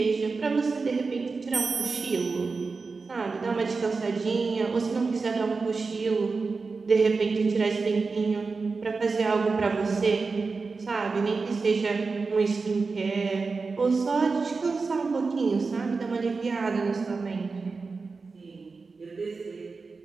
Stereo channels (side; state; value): left; quieter; 4.3 dB